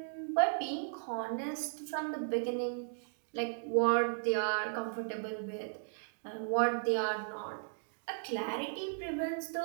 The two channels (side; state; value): left; silent; digital silence